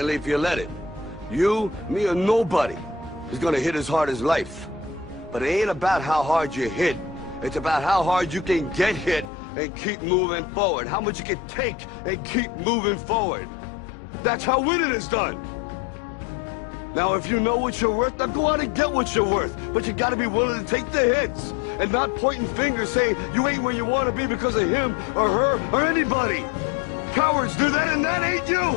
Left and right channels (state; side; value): drops out; right; at 9.3 s